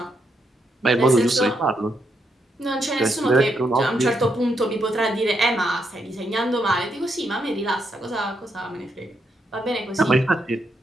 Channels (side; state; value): both; normal; correlation 0.79